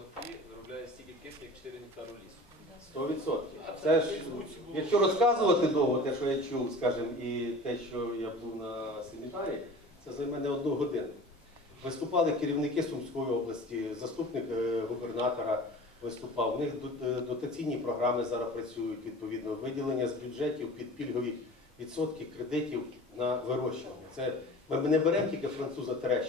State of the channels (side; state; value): both; normal; correlation 0.40